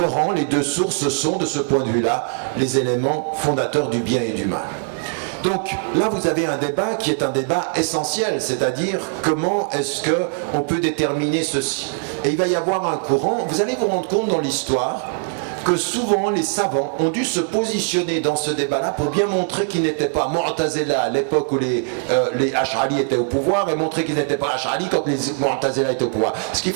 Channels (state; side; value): silent; left; 58 dB below the other